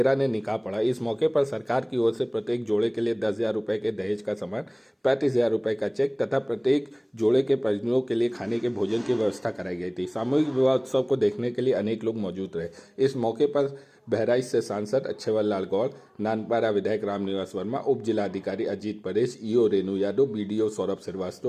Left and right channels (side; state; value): both; identical; correlation 1.00